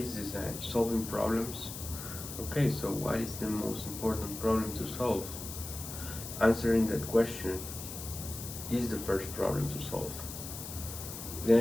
design? Solving problems? Okay, so what is the most important problem to solve? Answering that question is the first problem to solve.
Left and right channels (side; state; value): left; noise; hiss, 9 dB below the sound